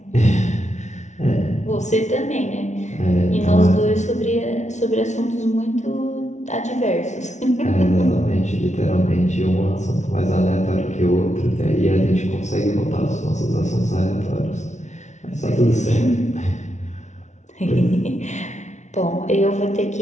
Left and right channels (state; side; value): late; right; 0.34 ms